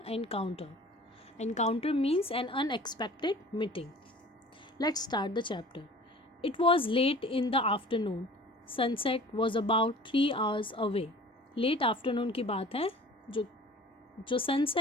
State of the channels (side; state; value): both; normal; correlation 0.44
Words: Encounter. Encounter means an unexpected meeting. Let's start the chapter. It was late in the afternoon. Sunset was about 3 hours away. Late afternoon की बात है. जो